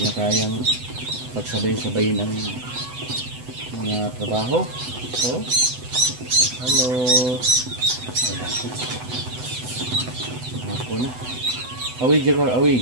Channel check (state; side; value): late; left; 8.0 ms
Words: kayang pagsabay-sabayin ang mga trabaho. So, hello. Ako na. Awi, Jagar,